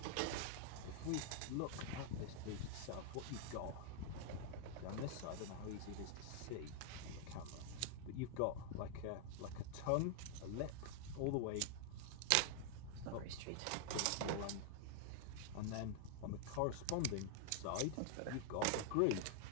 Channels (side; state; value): both; different; correlation 0.00